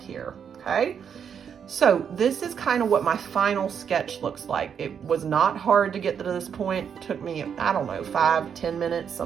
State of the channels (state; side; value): quieter; left; 7.6 dB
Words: here, okay? So this is kind of what my final sketch looks like. It was not hard to get to this point. It took me, I don't know, 5-10 minutes,